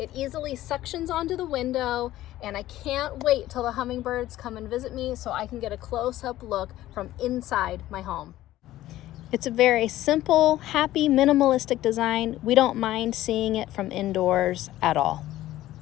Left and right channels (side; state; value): right; quieter; 14.9 dB